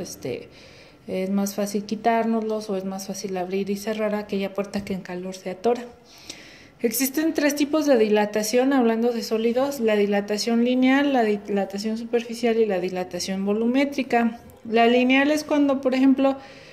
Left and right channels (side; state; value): both; identical; correlation 1.00